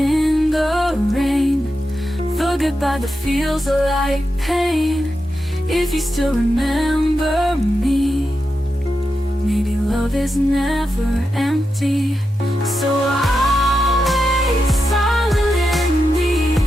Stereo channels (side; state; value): both; normal; correlation 0.88